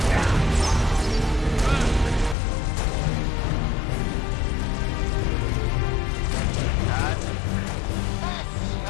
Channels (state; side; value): drops out; right; at 2.4 s